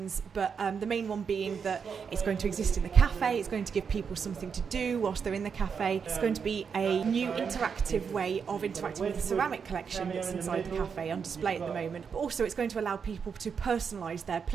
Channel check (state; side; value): quieter; left; 6.4 dB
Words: but the main one being that it's going to exist in the cafe, it's going to give people something to do whilst they're in the cafe. It's going to be a new interactive way of interacting with the ceramic collection that's inside the cafe on display at the moment, but also it's going to allow people to personalise their